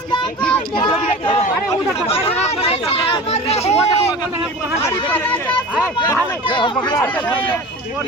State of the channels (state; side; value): normal; both; correlation 0.35